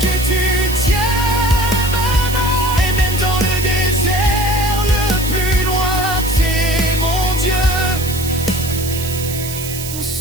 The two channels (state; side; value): noise; right; hiss, 8 dB below the sound